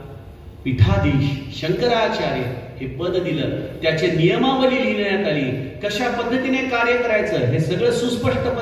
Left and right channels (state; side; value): identical; both; correlation 1.00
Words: पीठाधीश शंकराचार्य हे पद दिलं. त्याचे नियमावली लिहिण्यात आली. कशा पद्धतीने कार्य करायचं हे सगळं सुस्पष्ट